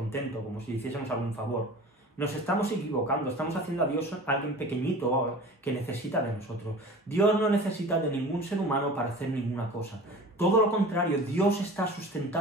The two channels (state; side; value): normal; both; correlation 0.39